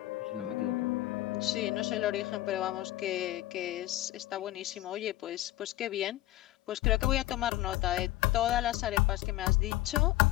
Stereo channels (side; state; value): right; quieter; 16.2 dB